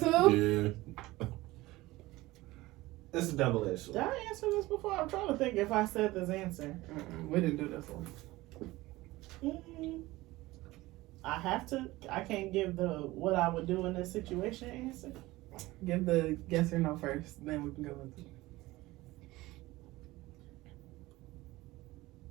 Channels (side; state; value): left; quieter; 19.1 dB